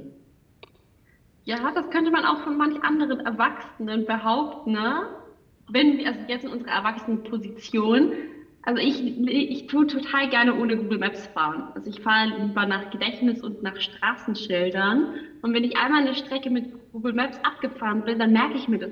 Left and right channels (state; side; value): identical; both; correlation 1.00